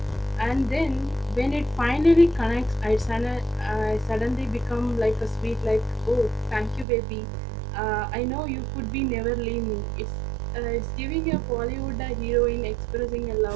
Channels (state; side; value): drops out; left; at 6.9 s